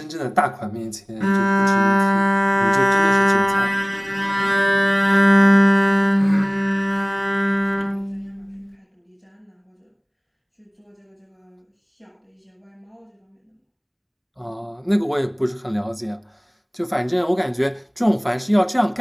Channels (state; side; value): identical; both; correlation 1.00